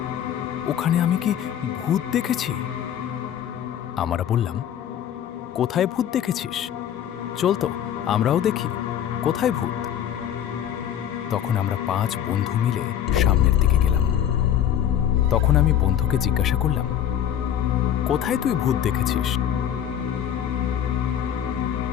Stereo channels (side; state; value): right; quieter; 10.0 dB